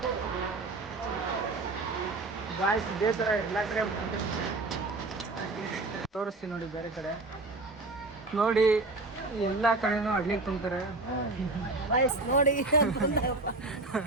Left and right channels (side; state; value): left; quieter; 3.2 dB